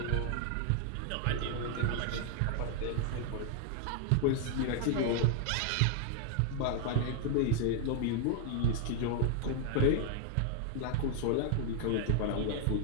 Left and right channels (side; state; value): both; different; correlation 0.00